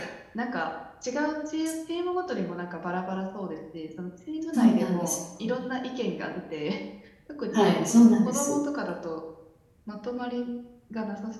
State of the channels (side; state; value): both; identical; correlation 1.00